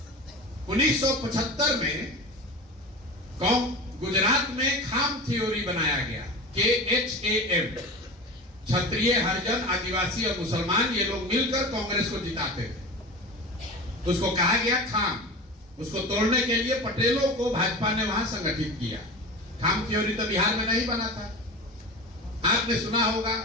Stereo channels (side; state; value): both; normal; correlation 0.30